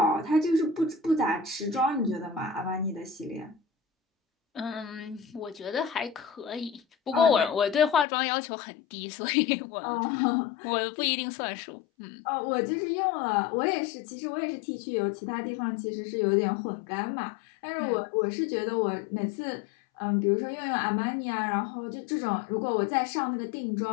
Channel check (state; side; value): drops out; right; at 8.1 s